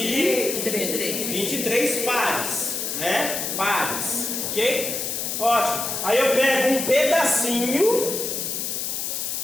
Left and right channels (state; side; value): noise; left; hiss, 2 dB below the sound